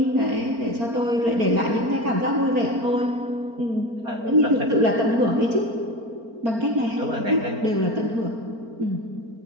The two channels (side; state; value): left; late; 4.4 ms